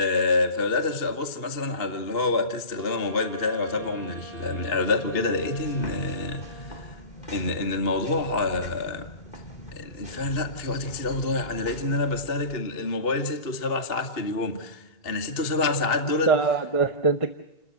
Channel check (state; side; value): late; right; 2.7 ms